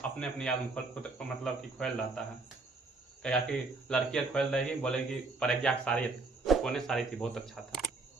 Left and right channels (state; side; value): quieter; left; 3.6 dB